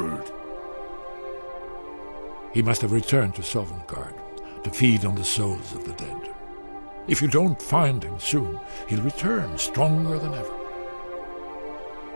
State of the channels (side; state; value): both; inverted; correlation -1.00